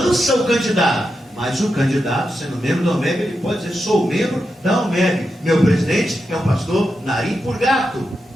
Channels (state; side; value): normal; both; correlation 0.87